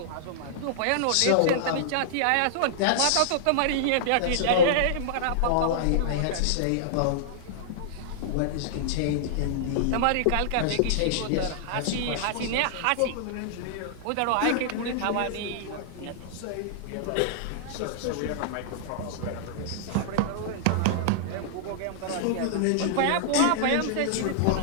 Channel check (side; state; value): both; different; correlation -0.01